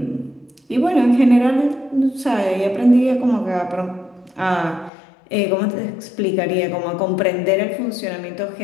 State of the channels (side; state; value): right; drops out; at 4.9 s